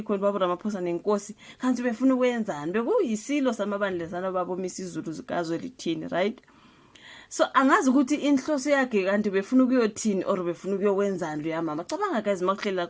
khona babo Ramaphosa nenkosi kanti befuna ukwenzani bekuyisilo samabandla sana babo Misuzulu KaZwelithini, right? So angazi ukuthi inhloso yakhe kanti befuna ukuyothini or befuna ukuyokwenzani lo yamama. Cabanga guys makuhlela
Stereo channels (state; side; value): identical; both; correlation 1.00